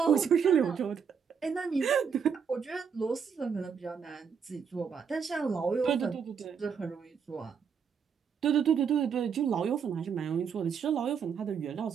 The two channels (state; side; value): quieter; left; 6.7 dB